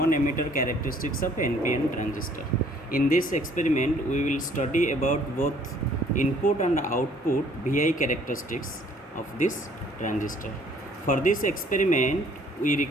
emitter characteristics of NPN transistor. In this experiment we will study about both input and output VI characteristics of this transistor. For this experiment we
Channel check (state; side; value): normal; both; correlation 0.59